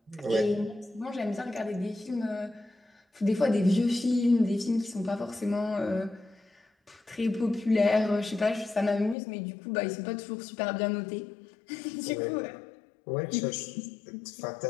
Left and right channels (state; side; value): drops out; right; at 9.2 s